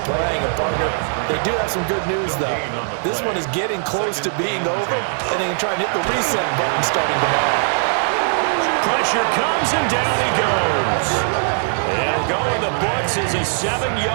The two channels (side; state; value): left; silent; 61 dB below the other